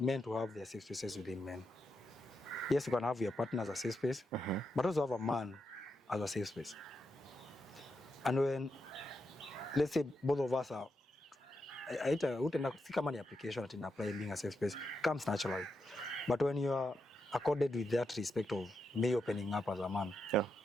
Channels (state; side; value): normal; both; correlation 0.84